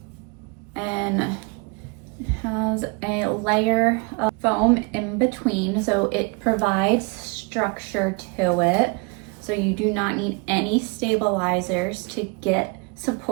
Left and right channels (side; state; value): left; quieter; 31.4 dB